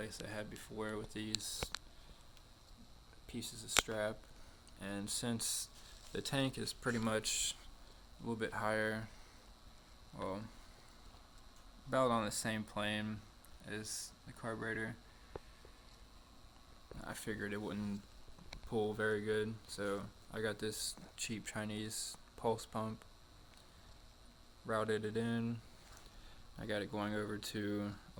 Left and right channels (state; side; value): identical; both; correlation 1.00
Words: I had before with these pieces of strap, and since the tank is pretty much a little bit higher, well, about on the same plane as the carburetor, I figured it wouldn't pull very good, so I got this cheap Chinese pulse pump, routed it in. I got it going over to a